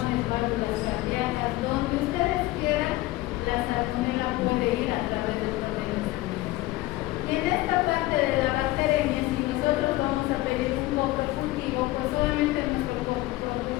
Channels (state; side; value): quieter; right; 18.3 dB